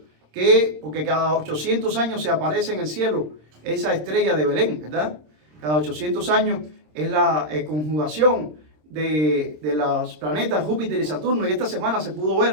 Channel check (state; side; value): late; left; 26 ms